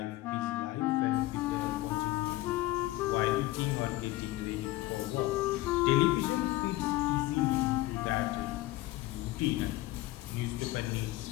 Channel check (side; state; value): right; quieter; 17.6 dB